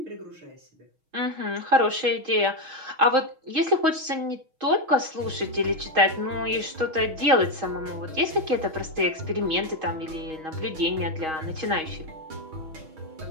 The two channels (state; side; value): late; left; 6.3 ms